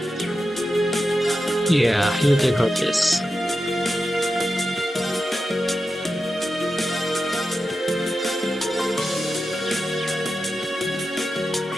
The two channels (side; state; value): both; normal; correlation 0.90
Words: Yeah, you take her this.